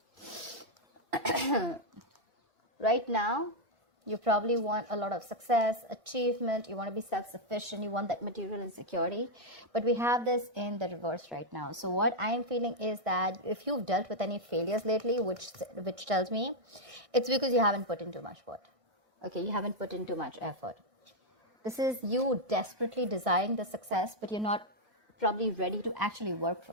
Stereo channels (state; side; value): late; left; 1.6 ms